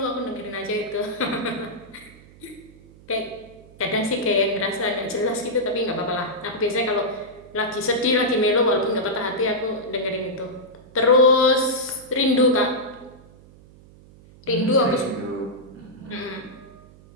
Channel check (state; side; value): noise; right; hum, 23 dB below the sound